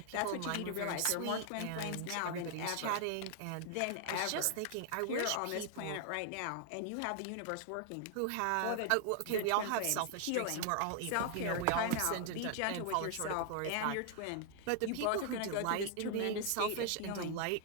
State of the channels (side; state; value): both; different; correlation 0.00